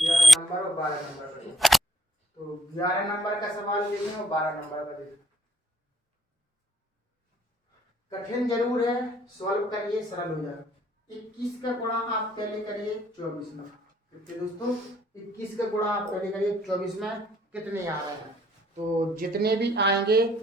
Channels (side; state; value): both; normal; correlation 0.66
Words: नंबर और 12 नंबर का, तो 11 नंबर का सवाल देखें और 12 नंबर का देखें। कठिन जरूर है, सॉल्व करिए सरल हो जाएगा। 21 का गुणा आप पहले करिए 24 में। कितने दोस्तों? 21 का गुणा आप पहले करिए 24 में, कितने आ रहे हैं? तो जितने भी आएंगे